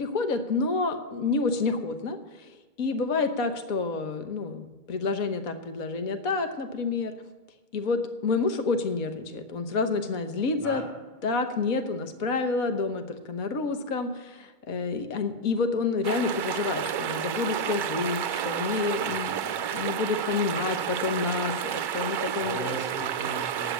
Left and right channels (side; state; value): right; late; 2.2 ms